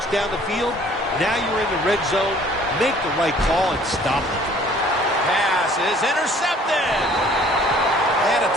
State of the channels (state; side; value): normal; both; correlation 0.55